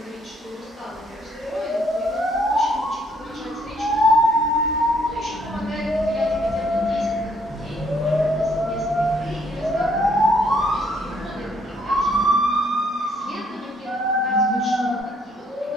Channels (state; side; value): normal; both; correlation 0.67